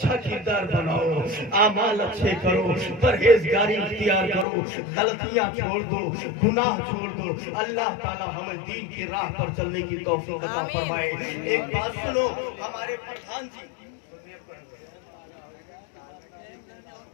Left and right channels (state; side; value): drops out; right; at 4.5 s